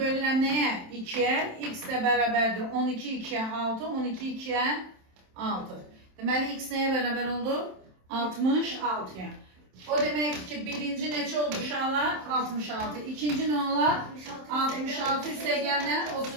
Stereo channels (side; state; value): left; late; 27 ms